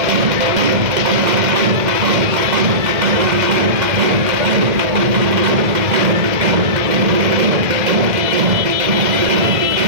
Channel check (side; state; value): left; late; 2.1 ms